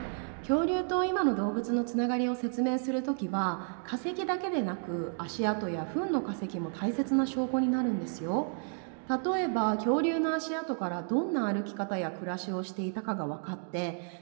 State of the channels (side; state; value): left; silent; 57 dB below the other